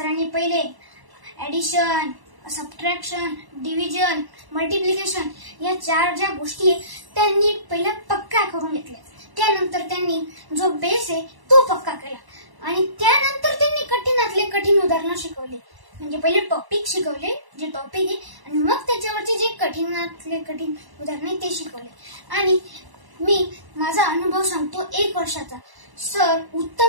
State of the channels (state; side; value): late; left; 1.0 ms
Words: पहिले ऍडिशन, सबट्रॅक्शन, डिव्हिजन, मल्टिप्लिकेशन या 4 ज्या गोष्टी आहेत त्यांनी पहिल्या पक्का करून घेतल्या. त्यानंतर त्यांनी जो बेस आहे तो पक्का केला आणि त्यानंतर त्यांनी कठीणातले कठीण उदाहरणं शिकवली. म्हणजे पहिले टॉपिक शिकवले, जे टॉपिक आहे, आणि मग त्याच्यावरचे जे कठीणातले कठीण उदाहरणे ते शिकवले. आणि मी माझा अनुभव सांगतो 1 वर्षाचा. सर